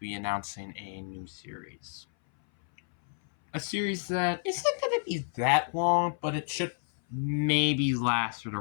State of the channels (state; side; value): silent; right; 58 dB below the other